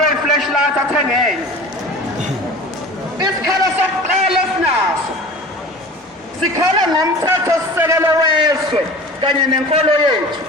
i-flashlight athengele. Isikhalo sokuqala esinaso sikhala ngomthetho-sisekelo wezwe kanye nenkolo yethu.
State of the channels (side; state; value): both; normal; correlation 0.39